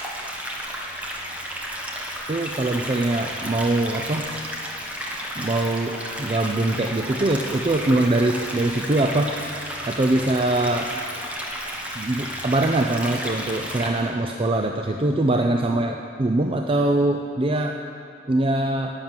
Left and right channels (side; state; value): both; normal; correlation 0.61